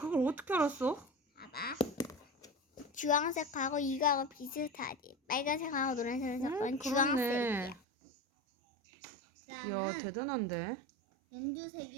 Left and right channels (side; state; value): left; drops out; at 7.8 s